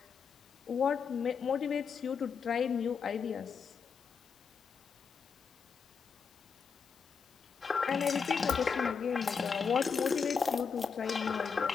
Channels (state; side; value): quieter; right; 6.0 dB